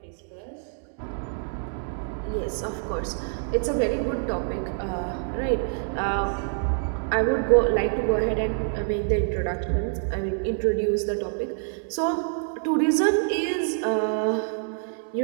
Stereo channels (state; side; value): silent; left; 61 dB below the other